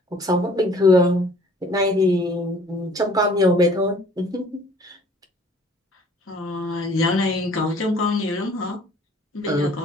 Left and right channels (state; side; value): normal; both; correlation 0.54